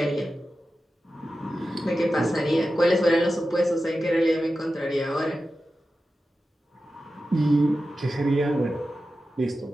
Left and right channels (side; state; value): both; normal; correlation 0.93